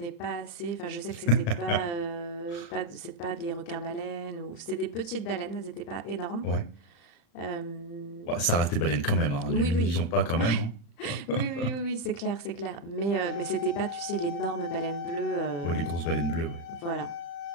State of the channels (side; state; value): right; late; 35 ms